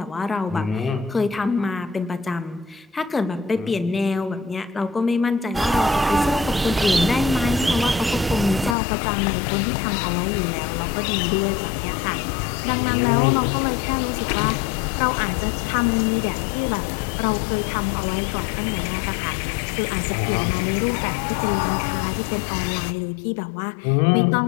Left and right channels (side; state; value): right; drops out; at 8.8 s